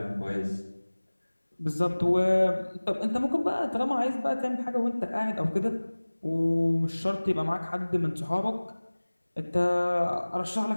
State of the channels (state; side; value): inverted; both; correlation -1.00